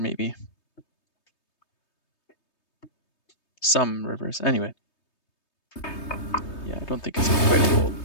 Some rivers. Anyway. Yeah, I don't think it's quite a fold,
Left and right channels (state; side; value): late; right; 3.2 ms